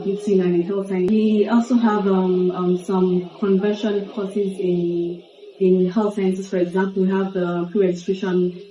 and in health science. We also have some conversion courses in health sciences. For example, we have the pre-registration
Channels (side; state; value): both; identical; correlation 1.00